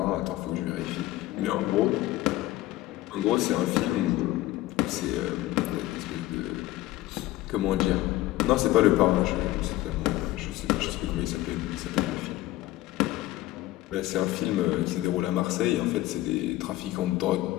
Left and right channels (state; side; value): quieter; right; 16.4 dB